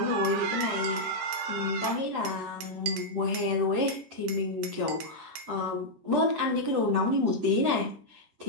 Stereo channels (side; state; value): left; late; 14 ms